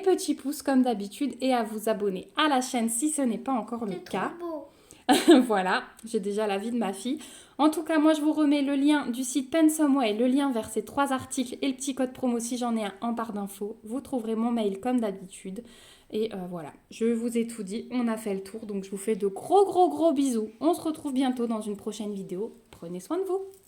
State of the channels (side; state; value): both; identical; correlation 1.00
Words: pouces comme d'habitude et à vous abonner à la chaîne si ce n'est pas encore le cas. Voilà, j'ai déjà l'avis de ma fille. En tout cas, moi je vous remets le lien du site Pensomeway, le lien vers ces 3 articles et le petit code promo si j'en ai un en barre d'infos. Vous trouverez mon mail comme d'habitude. Et voilà, je vous ai tout dit, on a fait le tour, donc je vous fais de gros bisous. On se retrouve bientôt dans une prochaine vidéo. Prenez soin de vous.